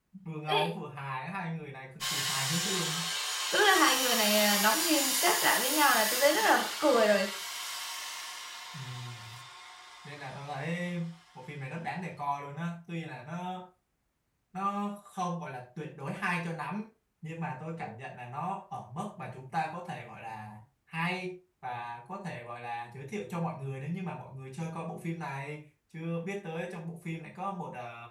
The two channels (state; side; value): identical; both; correlation 1.00